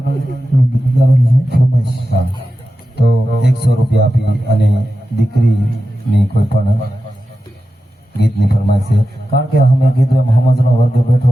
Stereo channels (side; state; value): both; normal; correlation 0.92